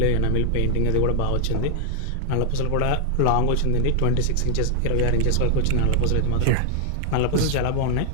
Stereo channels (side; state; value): both; different; correlation 0.00